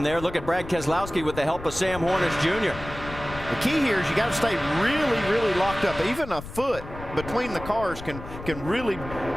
there. Look at Brad Keselowski with the help of Sam Hornish Jr. The key here is you got to stay really, really locked up. Even a foot between the cars can really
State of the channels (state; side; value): noise; left; rumble, 12 dB below the sound